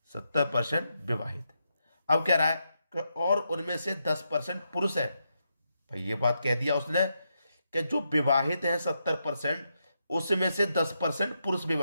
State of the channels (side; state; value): both; inverted; correlation -0.83